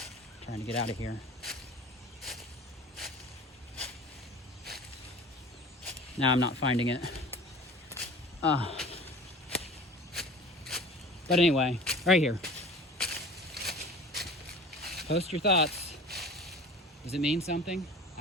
Trying to get out of here. Now I'm not finding it. But anyway, right here. Post your thoughts. Does it mean something?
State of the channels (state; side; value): normal; both; correlation 0.41